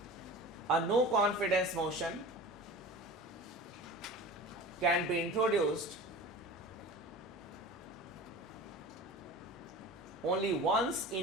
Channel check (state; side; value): normal; both; correlation 0.36